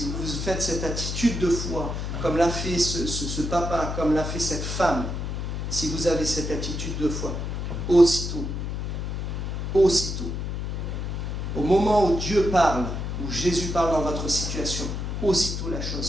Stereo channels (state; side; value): noise; left; hum, 3 dB below the sound